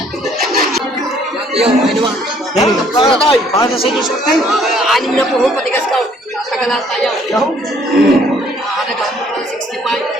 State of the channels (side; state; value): both; normal; correlation 0.61